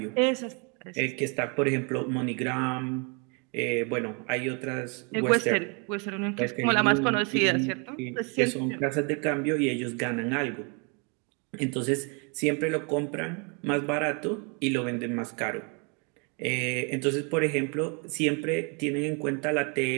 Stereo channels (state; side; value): quieter; left; 34.4 dB